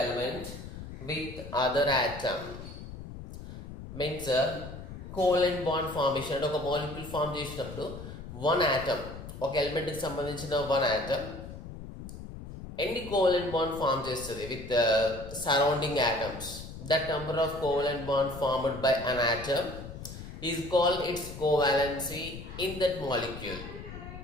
with other atom means covalent bond formation ఒక molecule form చేసినప్పుడు one atom ఒక element కి సంబంధించిన one atom any covalent bond form చేస్తుంది with the surrounding atoms. That number of covalent bond formed by an atom is called its covalency in that molecule.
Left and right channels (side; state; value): left; noise; rumble, 11 dB below the sound